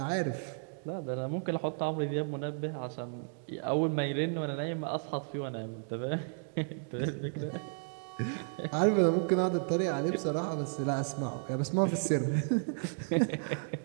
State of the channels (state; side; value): silent; left; digital silence